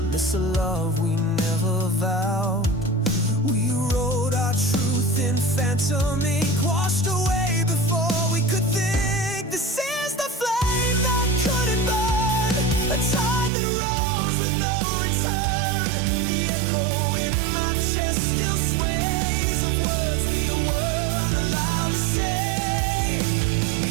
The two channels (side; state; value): left; drops out; at 13.5 s